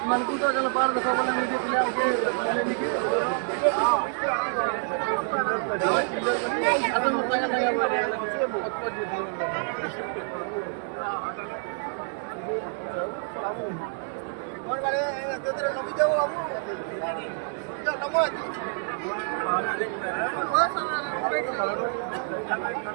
मन को तो चलो बाहर देखो बोले नहीं देते ले उनके बोले नहीं के हाँ चिल्लर बनी असम मत तंगा तंगा बोले ले बहुत बहुत जीत लो कौन वाले तो तेरे कभी जाओ अब जो नमो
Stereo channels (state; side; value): silent; left; 60 dB below the other